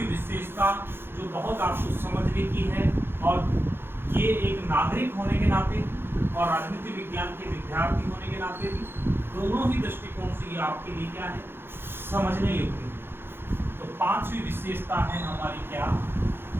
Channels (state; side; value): late; left; 0.11 ms